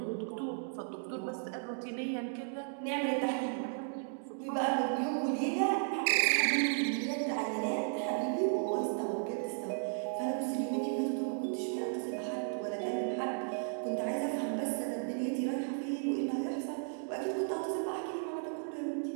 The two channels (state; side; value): silent; left; digital silence